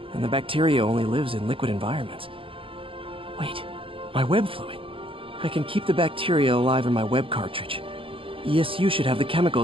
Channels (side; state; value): left; late; 0.26 ms